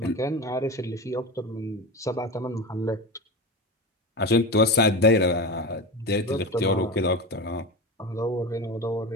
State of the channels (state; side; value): normal; both; correlation 0.24